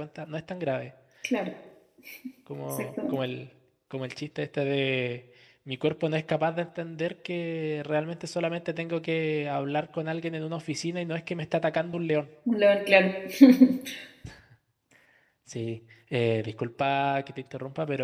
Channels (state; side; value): identical; both; correlation 1.00